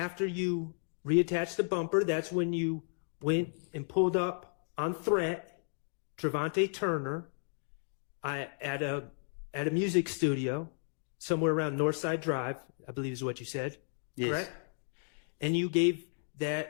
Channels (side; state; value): right; silent; 55 dB below the other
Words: you reattached the bumper, that's when you went and pulled up on threat Trevante Turner at a music studio somewhere around Northside Drive, I believe is what you said. Yes. Correct? And you gave